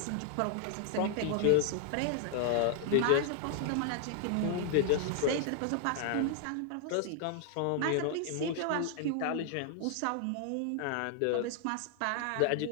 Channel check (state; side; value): different; both; correlation 0.00